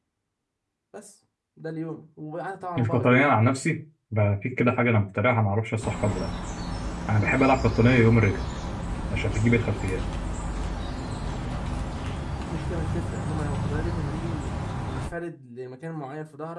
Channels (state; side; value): identical; both; correlation 1.00